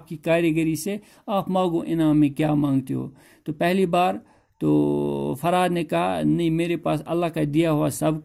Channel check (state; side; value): identical; both; correlation 1.00